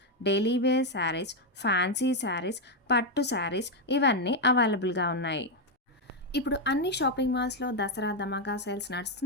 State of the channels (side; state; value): both; normal; correlation 0.03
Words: daily wear saris, fancy saris, పట్టు శారీస్ ఇవన్నీ అవైలబుల్గా ఉన్నాయి. ఇప్పుడు అన్ని షాపింగ్ మాల్స్లో దసరా ధమాకా సేల్స్